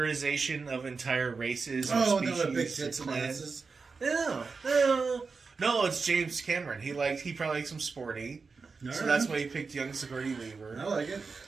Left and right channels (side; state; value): left; quieter; 4.7 dB